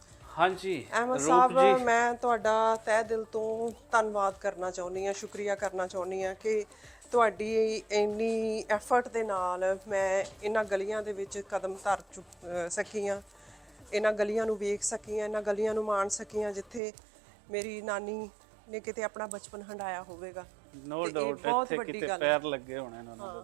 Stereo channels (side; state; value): left; drops out; at 16.8 s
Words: ਹਾਂਜੀ ਅਹਿਮਦ ਰੂਪ ਸਾਹਿਬ, ਜੀ, ਮੈਂ ਤੁਹਾਡਾ ਤਹਿ ਦਿਲ ਤੋਂ ਧੰਨਵਾਦ ਕਰਨਾ ਚਾਹੁੰਦੀ ਹਾਂ, ਸ਼ੁਕਰੀਆ ਕਰਨਾ ਚਾਹੁੰਦੀ ਹਾਂ ਕਿ ਤੁਹਾਡੀ ਇੰਨੀ ਐਫਰਟ ਦੇ ਨਾਲ ਮੈਂ ਇਹਨਾਂ ਗਲੀਆਂ ਦੇ ਵਿੱਚ ਕਦਮ ਧਰ ਸਕੀ ਹਾਂ, ਇਹਨਾਂ ਗਲੀਆਂ ਨੂੰ ਵੇਖ ਸਕੀ ਹਾਂ, ਇਹਨਾਂ ਗਲੀਆਂ ਨੂੰ ਮਾਣ ਸਕੀ ਹਾਂ ਜਿੱਥੇ ਮੇਰੀ ਨਾਨੀ ਨੇ ਕਿਤੇ ਆਪਣਾ ਬਚਪਨ ਹੰਡਾਇਆ ਹੋਵੇਗਾ। ਨੋ ਤੇ ਇਹ ਡਾਊਟ ਬਹੁਤ ਇੱਥੇ ਵੱਡੀ ਕਿਤੇ ਗੱਲ ਪੈਰ ਲੱਗੇ ਹੋਣੇ ਇਹਨਾਂ ਨੂੰ